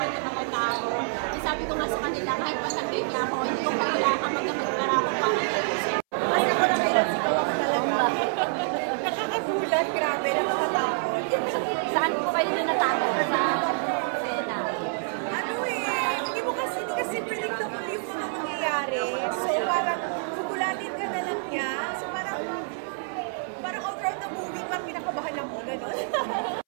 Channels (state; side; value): silent; left; 60 dB below the other